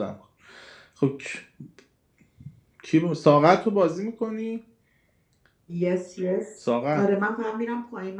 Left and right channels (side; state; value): both; identical; correlation 1.00